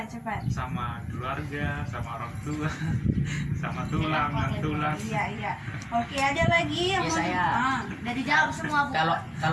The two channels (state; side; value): identical; both; correlation 1.00